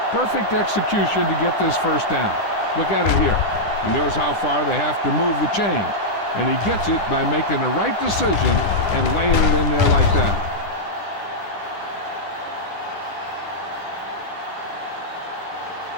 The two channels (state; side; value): late; right; 10 ms